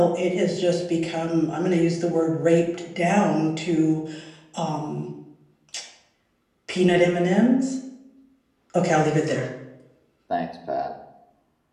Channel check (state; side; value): identical; both; correlation 1.00